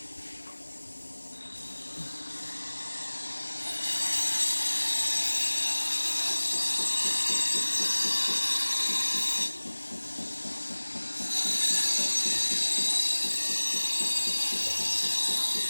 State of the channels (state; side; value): inverted; both; correlation -1.00